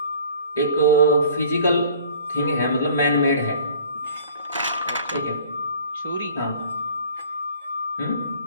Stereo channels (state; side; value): inverted; both; correlation -0.50